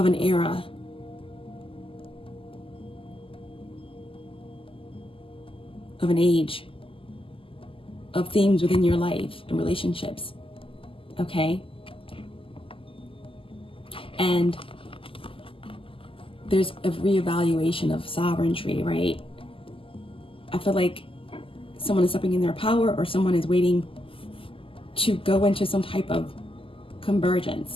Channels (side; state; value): right; late; 0.26 ms